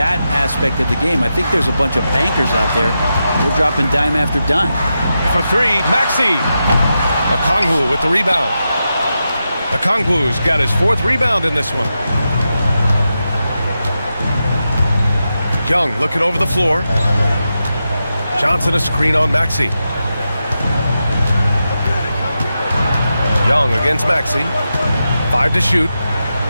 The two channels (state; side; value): inverted; both; correlation -0.89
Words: aspect of the game. I think there's a bunch of bankers out there. They're dropping dime after dime. For three, Maxey. Okongwu with the rebound. Okongwu's got his 4th rebound in this one. Young looking over the floor. Johnson a screen on Maxey. Young against Maxey. 5 to shoot.